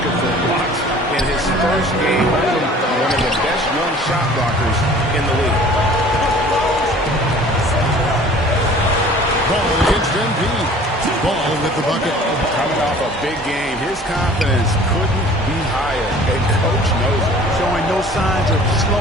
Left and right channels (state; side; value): normal; both; correlation 0.48